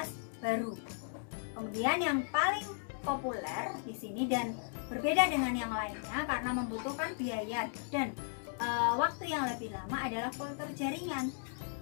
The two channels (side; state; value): right; silent; digital silence